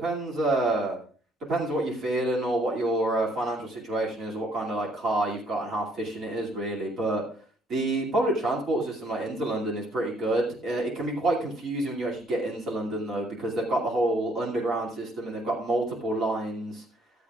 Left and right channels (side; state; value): both; normal; correlation 0.65